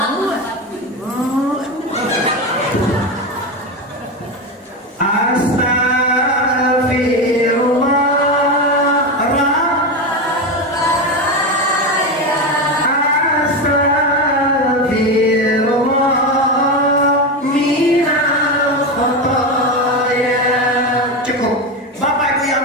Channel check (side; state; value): both; normal; correlation 0.16